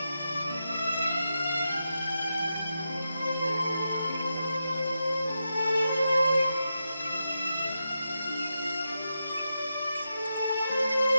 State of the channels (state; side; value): inverted; both; correlation -0.87